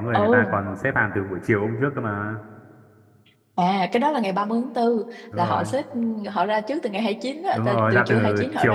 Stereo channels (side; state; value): both; identical; correlation 1.00